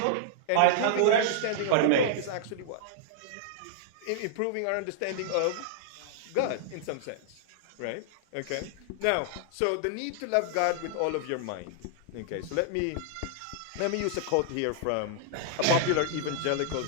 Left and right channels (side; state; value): both; different; correlation -0.01